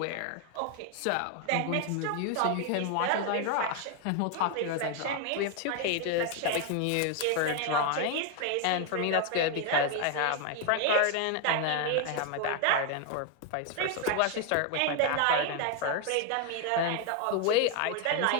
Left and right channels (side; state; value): both; different; correlation 0.01